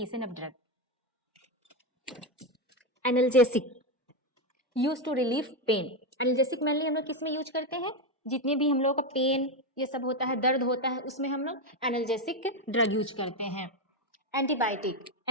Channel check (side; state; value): both; normal; correlation 0.10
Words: of drug. Analgesic use to relief pain. Analgesic mainly हम लोग किस में यूज करते हैं? जितने भी हम लोग का पेन ये सब होता है, दर्द होता है, उसमें हम लोग एनाल्जेसिक ड्रग यूज करते हैं। एंटीबायोटिक